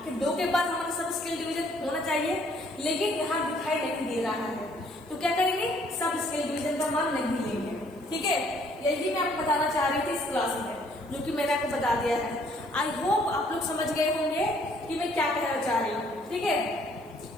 2 के बाद हमारा सब स्केल डिवीजन होना चाहिए, लेकिन यहाँ दिखाई नहीं दे रहा है, तो क्या करेंगे, सब स्केल डिवीजन का मान नहीं लेंगे, ठीक है। यही मैं आपको बताना चाह रही थी इस क्लास में, जो कि मैंने आपको बता दिया है। आई होप आप लोग समझ गए होंगे कि मैं क्या कहना चाह रही हूँ, ठीक है।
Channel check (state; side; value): noise; right; hiss, 29 dB below the sound